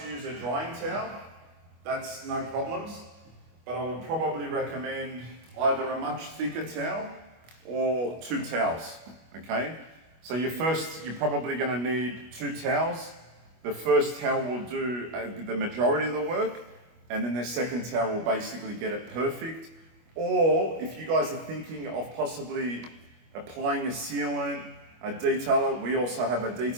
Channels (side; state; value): left; late; 25 ms